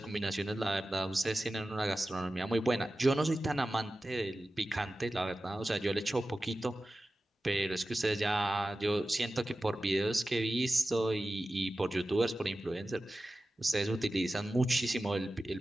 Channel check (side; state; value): both; normal; correlation 0.94